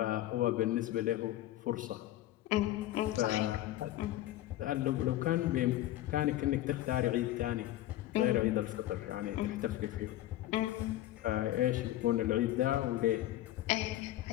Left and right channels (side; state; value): right; quieter; 14.6 dB